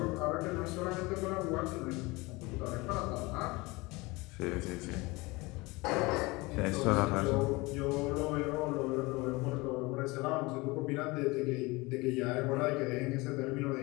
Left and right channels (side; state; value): right; quieter; 23.6 dB